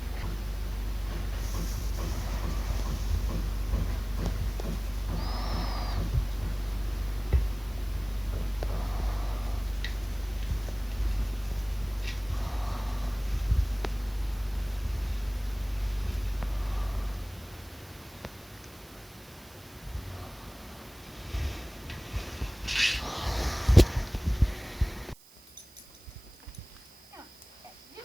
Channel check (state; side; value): noise; right; hiss, 24 dB below the sound